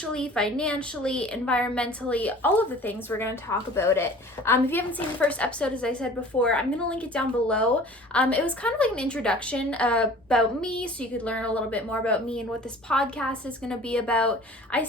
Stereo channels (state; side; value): normal; both; correlation 0.45